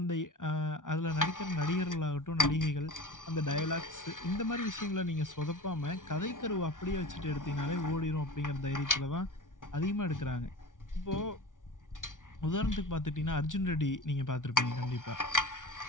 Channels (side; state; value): right; late; 0.88 ms